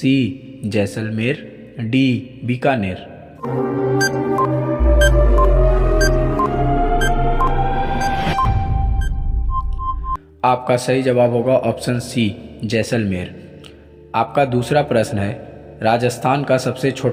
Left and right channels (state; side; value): identical; both; correlation 1.00